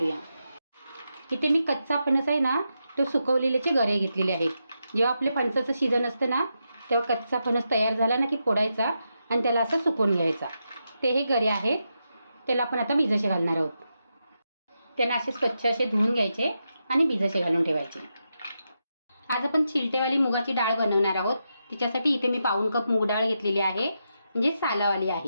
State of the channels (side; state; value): both; inverted; correlation -0.85